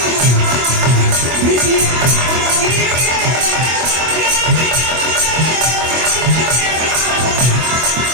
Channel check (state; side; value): late; left; 24 ms